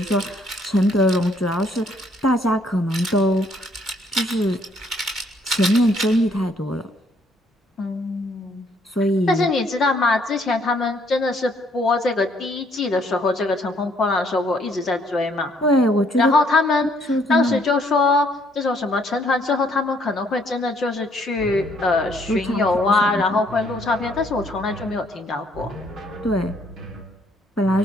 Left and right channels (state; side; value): normal; both; correlation 0.66